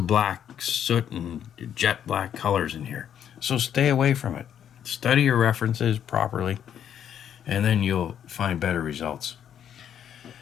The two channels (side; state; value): right; quieter; 9.3 dB